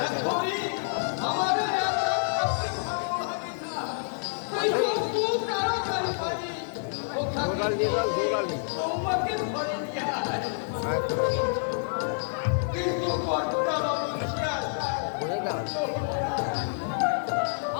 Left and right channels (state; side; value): silent; right; digital silence